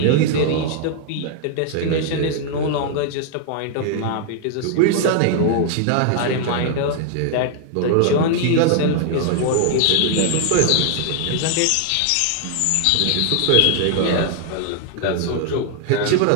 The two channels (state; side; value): different; both; correlation 0.00